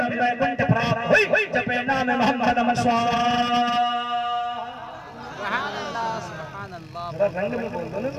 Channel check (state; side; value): identical; both; correlation 1.00